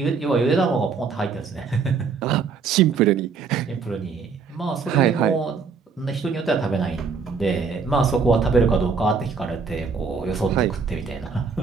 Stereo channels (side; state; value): left; quieter; 5.2 dB